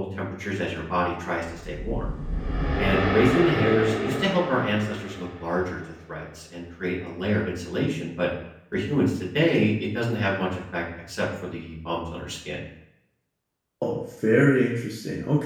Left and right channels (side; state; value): both; identical; correlation 1.00